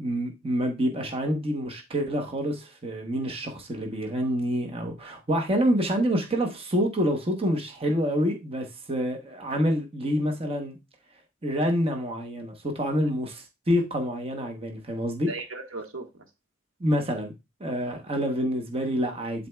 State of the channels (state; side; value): normal; both; correlation 0.66